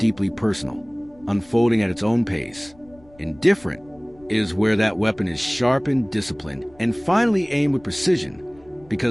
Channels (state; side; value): noise; left; rumble, 27 dB below the sound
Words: personal, unfolding at its own pace. Indifferent is where that weapon is sharpened, disciplined, and finally aimed with precision,